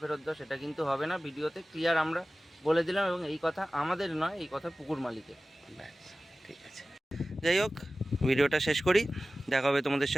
দাও, সেটা কিন্তু হবে না। ভিডিওতে ক্লিয়ার আমরা বলে দিলাম, এবং এই কথা আমাদের নয়, এই কথা পুকুর মালিকের। ঠিক আছে। যাই হোক, ভিডিওটা শেষ করি। দেখা হবে তোমাদের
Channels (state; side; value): normal; both; correlation 0.96